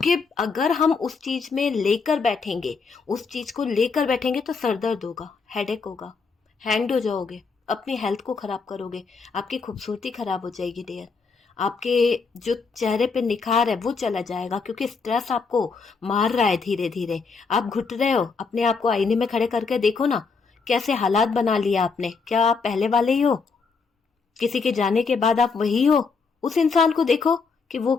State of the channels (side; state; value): right; quieter; 4.9 dB